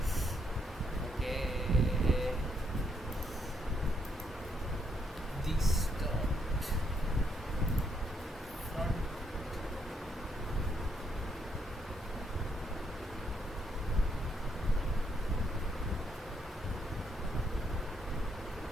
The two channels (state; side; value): normal; both; correlation 0.75